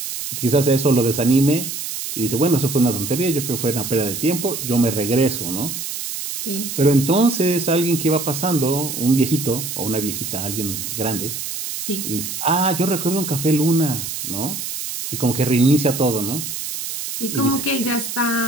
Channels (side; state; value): right; noise; hiss, 6 dB below the sound